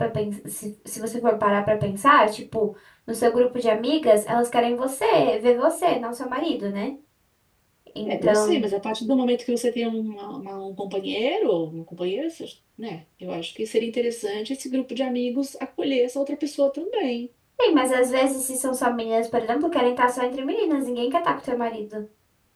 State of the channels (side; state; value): both; identical; correlation 1.00